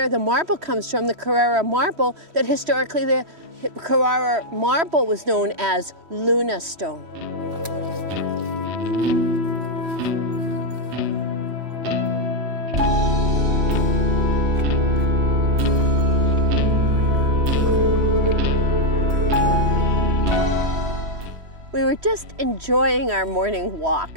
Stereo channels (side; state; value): left; late; 3.1 ms